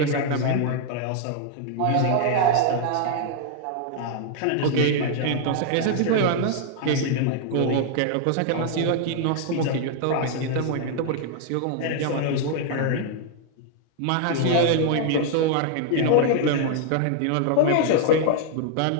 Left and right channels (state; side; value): different; both; correlation 0.00